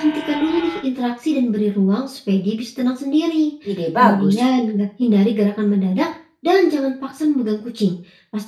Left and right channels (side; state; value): both; identical; correlation 1.00